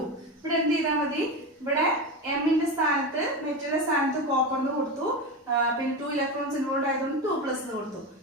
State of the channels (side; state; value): both; normal; correlation 0.20